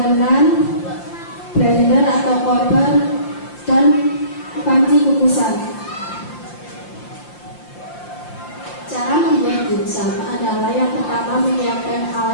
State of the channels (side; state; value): right; late; 5.8 ms